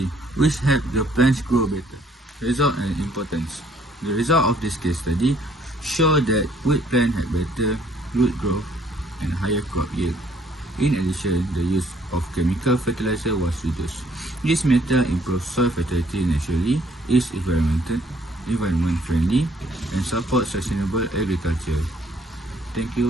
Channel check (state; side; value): normal; both; correlation 0.63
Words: which helps the plants grow better. Result and importance. The result of this case study show that wheat plants have better root growth and higher crop yield. In addition, the use of chemical fertilizer was reduced. This method improves soil fertility naturally, is environment friendly, and supports sustainable agriculture. Thank